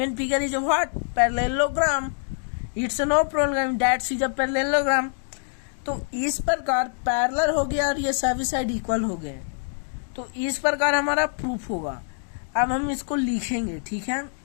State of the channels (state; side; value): silent; right; digital silence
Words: figure is a what? Parallelogram, it's a no problem, that is a parallelogram। तो इस प्रकार parallel हो गया और ये सभी साइड इक्वल हो गए, तो इस प्रकार हमारा प्रूफ होगा। अब हम इसको लिखेंगे, ठीक है,